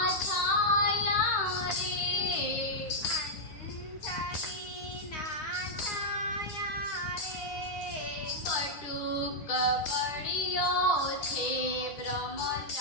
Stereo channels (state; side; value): late; right; 10 ms